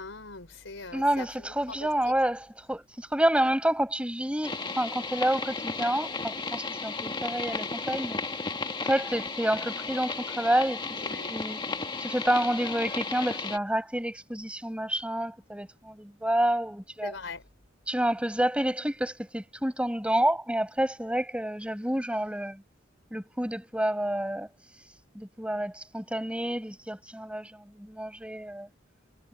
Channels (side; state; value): both; normal; correlation 0.83